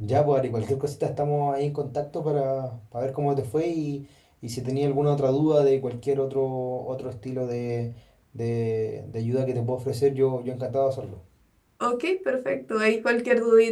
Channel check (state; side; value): identical; both; correlation 1.00